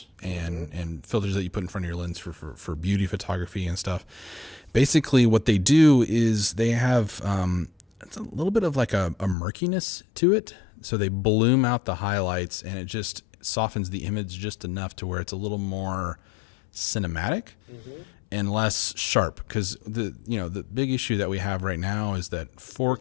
and filters that you put in front of your lens for beauty photography and stuff. Basically, what they do is they have it's a little bit of like a murkiness to it. So they bloom out the highlights, and it just softens the image just enough to where it's a little more cinematic and less sharp. Because the big issue that we have right now is that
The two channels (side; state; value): right; drops out; at 9.3 s